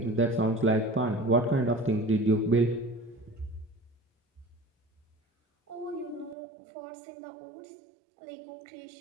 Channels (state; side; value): drops out; left; at 6.4 s